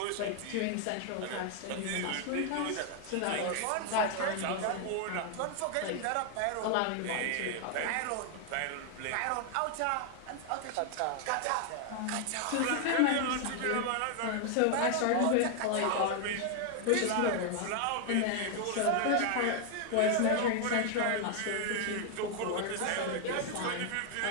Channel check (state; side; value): different; both; correlation 0.00